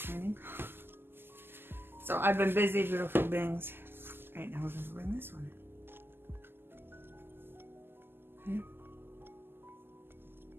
cleaning. So I've been busy, beautiful beings. Right now we're going to bring this one in. Okay.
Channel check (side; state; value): left; late; 0.11 ms